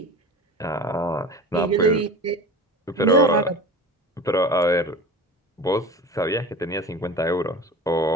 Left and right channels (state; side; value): normal; both; correlation 0.35